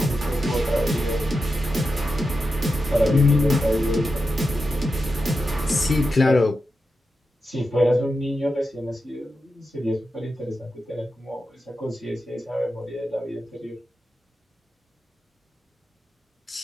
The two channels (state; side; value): normal; both; correlation 0.89